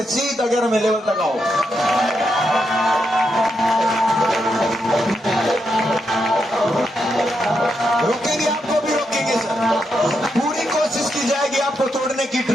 सीधा 11वें लेवल तक आओ। रोकेंगे, आपको भी रोकेंगे सर। पूरी कोशिश की जाएगी आपको तोड़ने की,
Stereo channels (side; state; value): both; normal; correlation 0.82